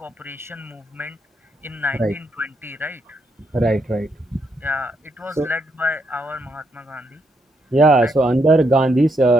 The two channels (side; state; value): both; normal; correlation 0.78